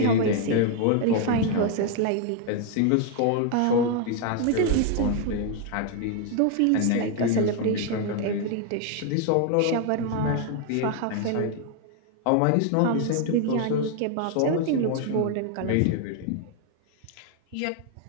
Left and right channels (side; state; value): both; different; correlation 0.01